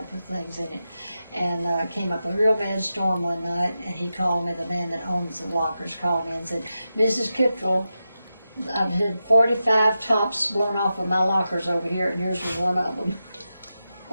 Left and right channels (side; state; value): both; inverted; correlation -0.91